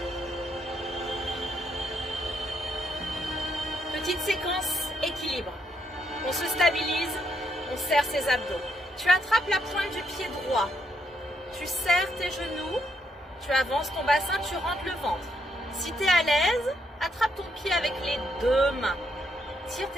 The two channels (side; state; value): both; normal; correlation 0.76